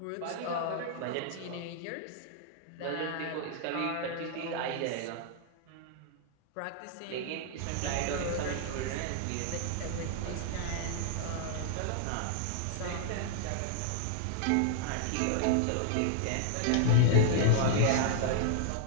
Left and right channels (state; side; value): different; both; correlation -0.01